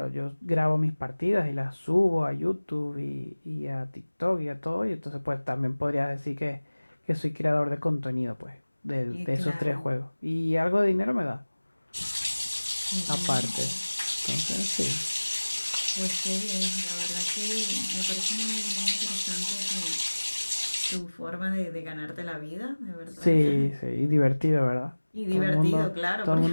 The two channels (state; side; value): inverted; both; correlation -1.00